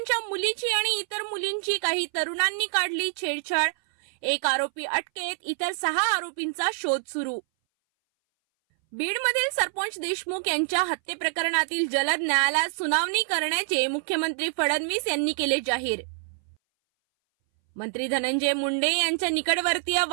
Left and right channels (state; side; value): silent; left; 59 dB below the other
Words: मुलीची आणि इतर मुलींची काही तरुणांनी काढली छेडछाड. एक आरोपी अटकेत, इतर 6 आरोपींचा शोध सुरू. बीडमधील सरपंच देशमुख यांच्या हत्ये प्रकरणातील जलद न्यायालयात सुनावणी करण्याचे मुख्यमंत्री फडणवीस यांनी केले जाहीर. मंत्री धनंजय मुंडे यांच्या निकटवर्तीय